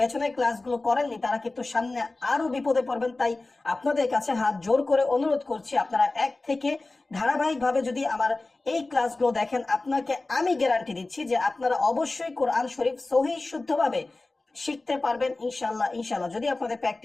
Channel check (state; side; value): quieter; right; 3.2 dB